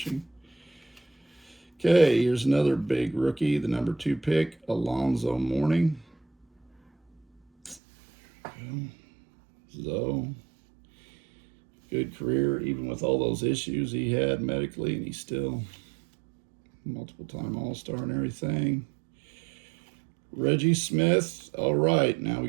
Okay, here's another big rookie, the number 2 pick, Alonzo Mourning. Zoe. Good career, even with all those issues he had medically, and he's still multiple-time All-Star and everything. Reggie Smith. All right, now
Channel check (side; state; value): left; drops out; at 7.8 s